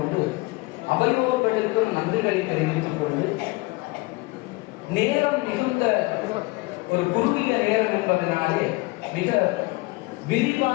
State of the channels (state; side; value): quieter; right; 23.7 dB